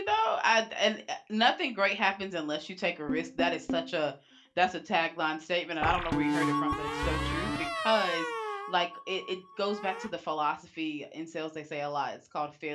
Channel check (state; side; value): identical; both; correlation 1.00